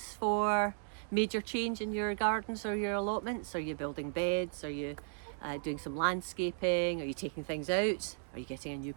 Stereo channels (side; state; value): left; silent; digital silence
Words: for major change in your gardens or your allotments? Are you building beds? Are you doing some landscaping? Are you taking things out? Are you getting a new